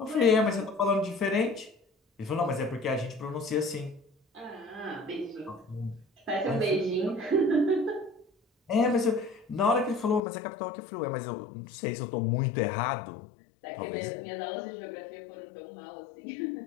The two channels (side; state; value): right; drops out; at 10.2 s